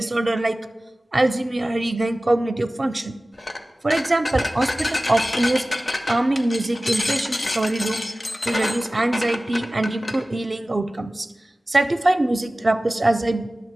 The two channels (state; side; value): normal; both; correlation 0.97